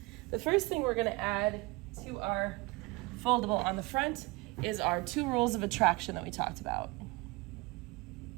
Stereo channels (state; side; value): quieter; left; 24.3 dB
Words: The first thing we're going to add to our foldable on the front is our 2 rules of attraction that we talked about.